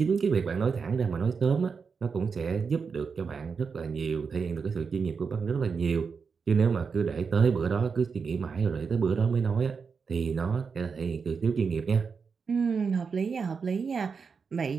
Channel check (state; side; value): quieter; left; 5.5 dB